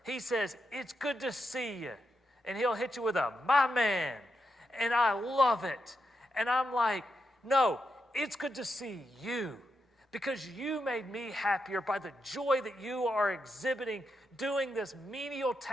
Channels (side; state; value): both; normal; correlation 0.85